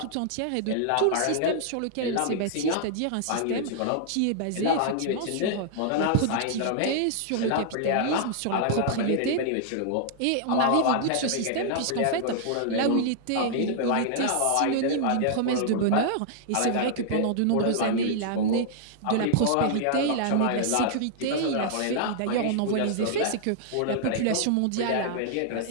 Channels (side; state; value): both; different; correlation -0.01